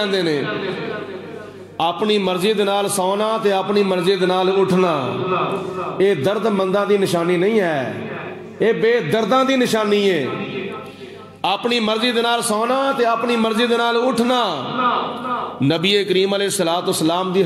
نے. اپنی مرضی دے نال سونا تے اپنی مرضی دے نال اٹھنا اے درد منداں دی نشانی نہیں ہے, اے بے درداں دی نشانی ہے. اپنی مرضی دے نال سونا تے اپنی مرضی دے نال اٹھنا نبی کریم علیہ الصلوۃ والسلام دی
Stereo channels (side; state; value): both; identical; correlation 1.00